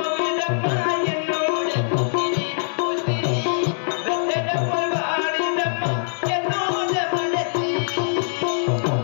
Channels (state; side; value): silent; right; digital silence